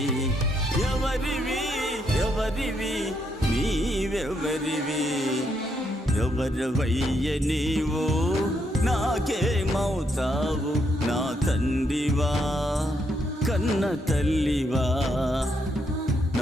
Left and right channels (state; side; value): normal; both; correlation 0.77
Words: ఎవరివి ఎవరివి నీవెవరివి. ఎవరివయ్య నీవు నాకేమవుతావు, నా తండ్రివా కన్న తల్లివా.